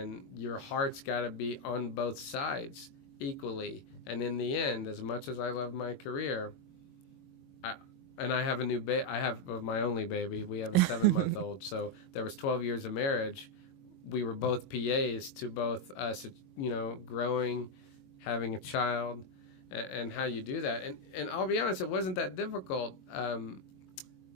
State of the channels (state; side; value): late; right; 22 ms